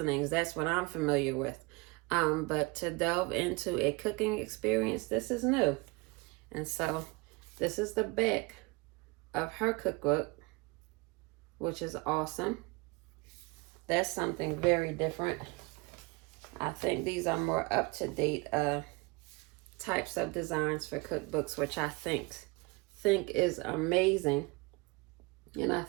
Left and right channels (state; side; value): quieter; left; 26.7 dB